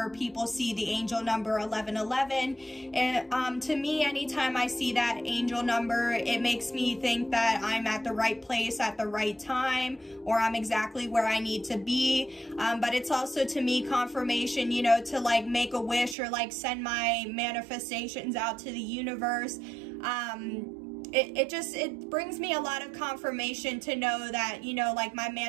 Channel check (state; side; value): drops out; left; at 16.2 s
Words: people see the angel number 1111, and to me, anytime I see that angel number, it makes me think that I'm at the right place at the right time, or I'm exactly where I need to be. But it's also, to me, confirmation, you know, to like make a wish or like send my manifestations out to the universe. It brings me a lot of confirmation to know that, you know, like my